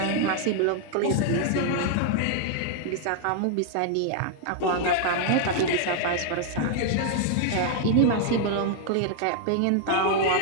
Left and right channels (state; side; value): different; both; correlation 0.00